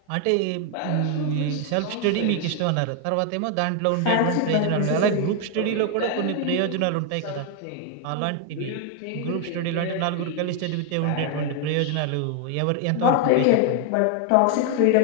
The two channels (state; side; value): different; both; correlation 0.00